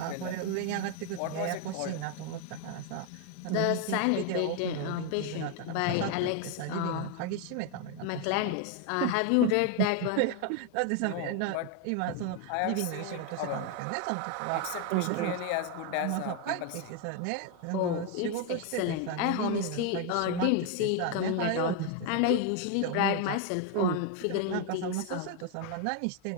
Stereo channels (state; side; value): different; both; correlation 0.01